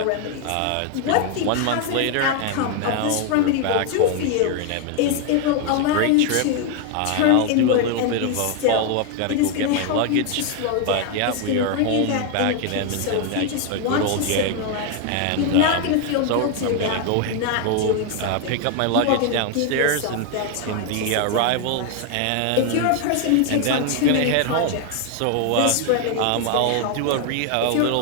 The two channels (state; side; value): different; both; correlation 0.01